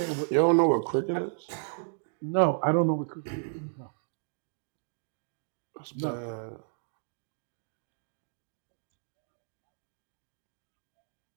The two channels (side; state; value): left; silent; digital silence